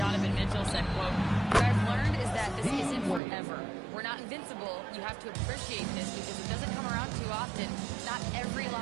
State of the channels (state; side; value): drops out; left; at 3.2 s